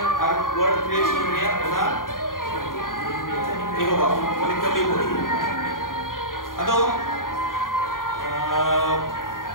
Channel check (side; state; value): right; late; 0.90 ms